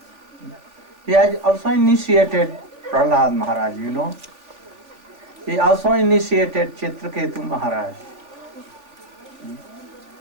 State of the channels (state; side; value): late; left; 3.4 ms